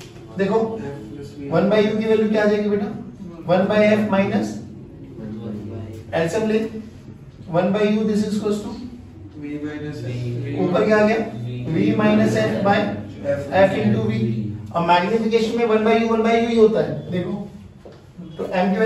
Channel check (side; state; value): both; identical; correlation 1.00